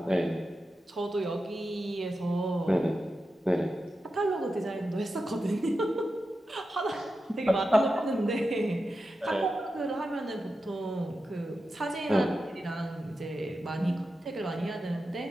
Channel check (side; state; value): both; normal; correlation 0.90